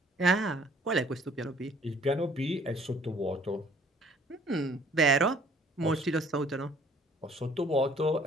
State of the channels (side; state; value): both; normal; correlation 0.58